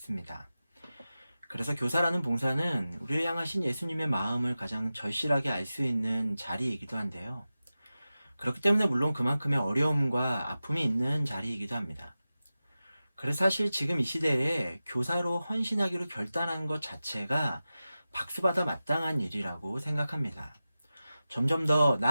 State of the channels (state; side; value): inverted; both; correlation -0.94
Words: 그래서 교사라는 봉사는 우리를 향하신 예수님의 마음을 가장 절실하게 알 수 있는 자리이기도 한데요. 그렇기 때문에 물론 그만큼의 어려움과 아픔이 있는 자리이기도 합니다. 그래서 사실 지금 이 시대에 교사로 헌신하기로 결단한 것 자체가 박수받아 마땅한 일이라고 생각합니다. 점점 더